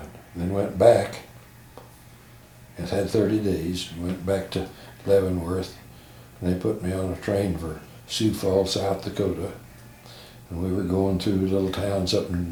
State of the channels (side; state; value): both; identical; correlation 1.00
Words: And then went back. It had 30 days. Went back to Leavenworth, and they put me on a train for Sioux Falls, South Dakota. And we were going through little towns up